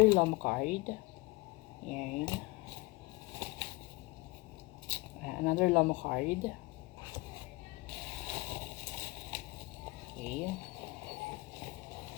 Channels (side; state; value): right; quieter; 23.1 dB